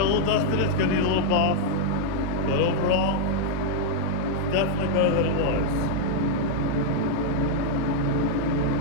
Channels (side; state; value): both; different; correlation -0.01